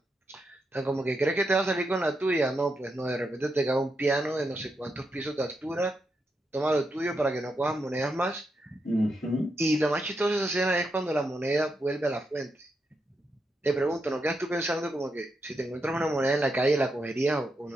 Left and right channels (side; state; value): both; normal; correlation 0.84